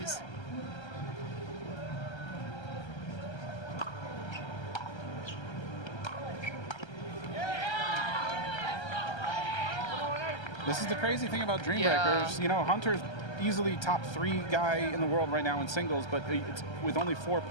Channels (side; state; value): right; late; 1.3 ms